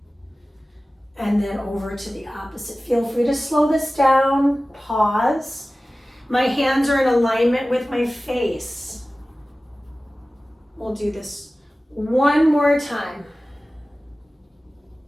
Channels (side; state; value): both; normal; correlation 0.97